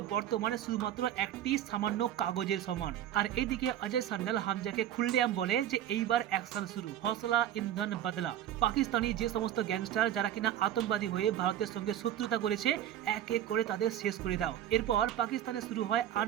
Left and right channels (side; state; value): left; quieter; 11.5 dB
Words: বর্তমানে শুধুমাত্র একটি সামান্য কাগজের সমান। আর এইদিকে অজয় সান্যাল হামজাকে খুললেআম বলে যে এইবার অ্যাকশন শুরু, হসলা ইন্ধন বদলা। পাকিস্তানি যে সমস্ত গ্যাংস্টার যারা কিনা আতঙ্কবাদী হয়ে ভারতের সঙ্গে শত্রুতা করেছে, এক এক করে তাদের শেষ করে দাও। এরপর পাকিস্তানে শুরু হয়